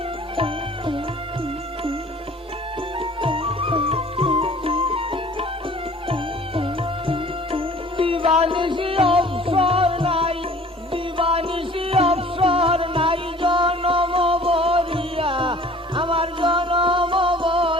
দিবানিশি অবসর নাই, দিবানিশি অবসর নাই, জনম বরিয়া আমার জনম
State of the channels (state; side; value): normal; both; correlation 0.49